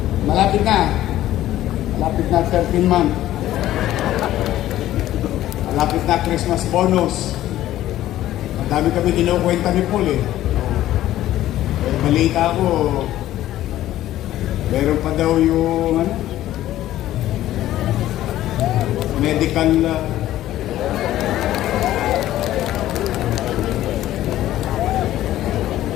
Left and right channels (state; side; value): quieter; right; 13.8 dB